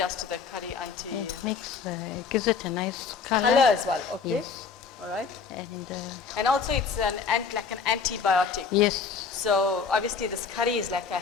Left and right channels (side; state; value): right; quieter; 5.7 dB